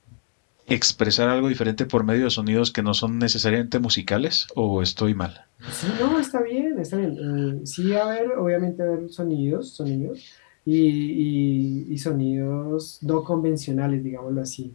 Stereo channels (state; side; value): silent; right; 63 dB below the other